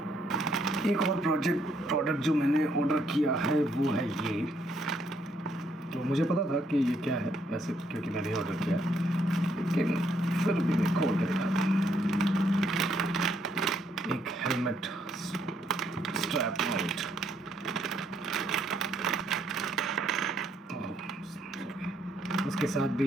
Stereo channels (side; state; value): both; normal; correlation 0.71